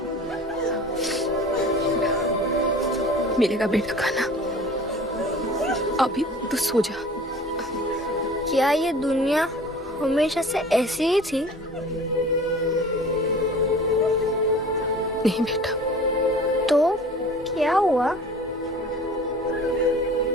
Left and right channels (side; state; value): both; normal; correlation 0.43